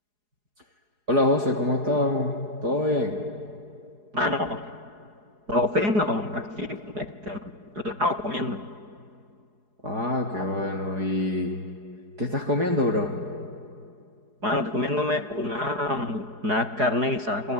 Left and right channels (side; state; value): left; late; 4.8 ms